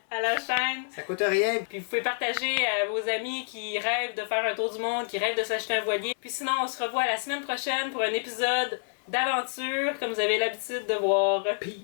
à la chaîne. Ça coûte rien. Puis vous pouvez partager à vos amis qui rêvent de faire un tour du monde, qui rêvent de s'acheter un voilier. Puis sinon, on se revoit la semaine prochaine pour un épisode d'aventure, comme vous avez l'habitude de voir.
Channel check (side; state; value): right; silent; 59 dB below the other